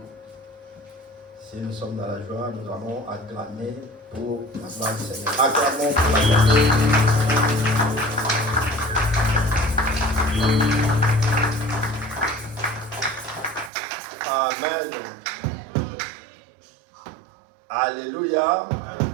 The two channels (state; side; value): drops out; left; at 13.7 s